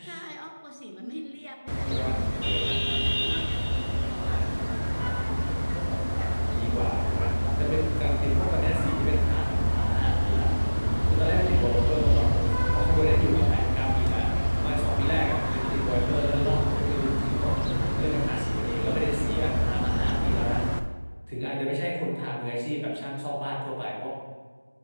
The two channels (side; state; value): both; inverted; correlation -1.00